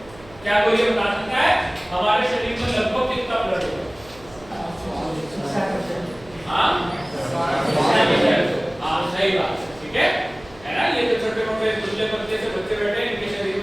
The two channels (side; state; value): right; noise; hum, 22 dB below the sound